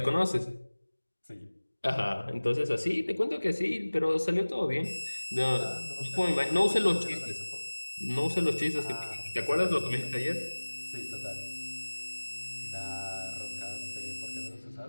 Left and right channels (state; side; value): inverted; both; correlation -1.00